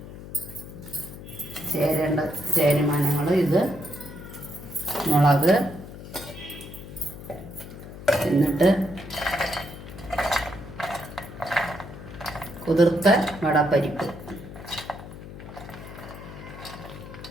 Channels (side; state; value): left; noise; hum, 13 dB below the sound